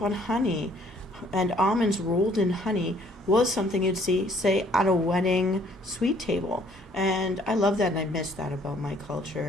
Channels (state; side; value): normal; both; correlation 0.61